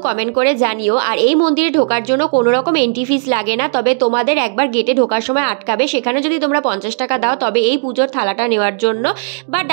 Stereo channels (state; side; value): silent; left; digital silence